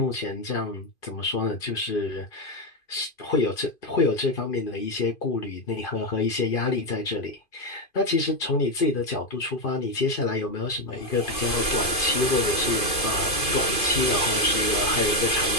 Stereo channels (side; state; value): right; late; 2.5 ms